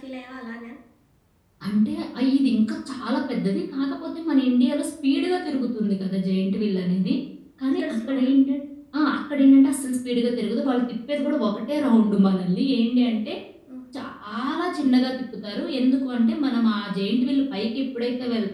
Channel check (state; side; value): identical; both; correlation 1.00